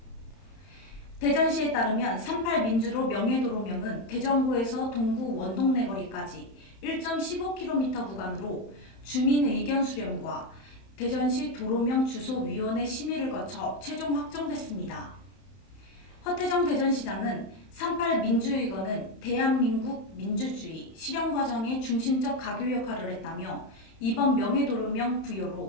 대전시에 따르면 3.8 민주로 명예도로명은 대전구에서 동구 원동네거리까지 1.15km 구간으로 주민 의견 수렴과 대전시 도로명 주소위원회 심의를 거쳐 최종 확정됐습니다. 허태정 대전시장은 3.8 민주의거는 대한민국 민주주의 실현 과정의 중심적 가교 역할을 했다며 이번 명예도로명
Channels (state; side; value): late; right; 31 ms